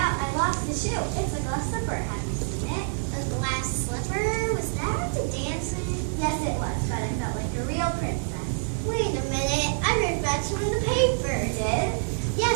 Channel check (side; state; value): left; silent; 60 dB below the other